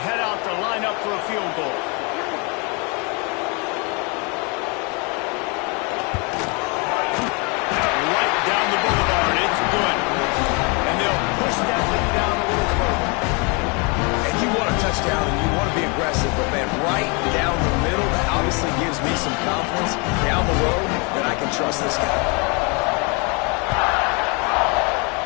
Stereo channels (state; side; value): quieter; right; 31.9 dB